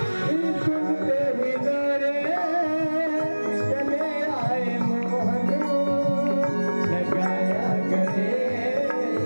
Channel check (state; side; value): inverted; both; correlation -1.00